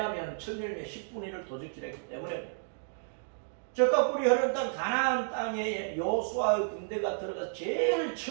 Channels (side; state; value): left; silent; digital silence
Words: 천열매 10분의 1을 도적질했기 때문에. 젖과 꿀이 흐르는 땅 가나안 땅에 여호수아의 군대가 들어가서 제일